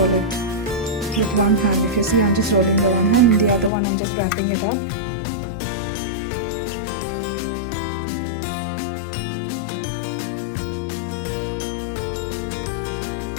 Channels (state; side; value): drops out; right; at 3.7 s